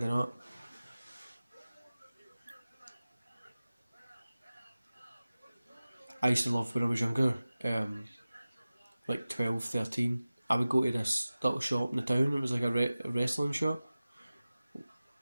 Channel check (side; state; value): both; inverted; correlation -0.97